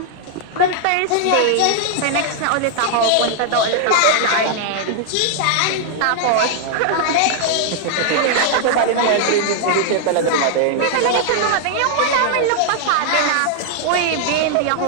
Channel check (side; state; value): both; different; correlation -0.01